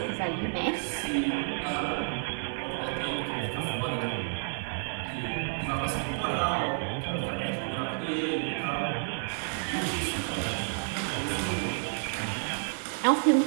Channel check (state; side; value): silent; left; 58 dB below the other